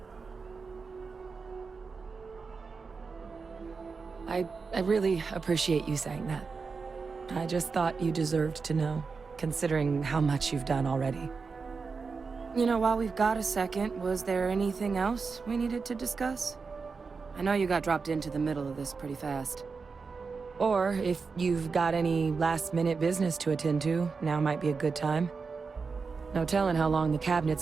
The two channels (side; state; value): left; quieter; 4.8 dB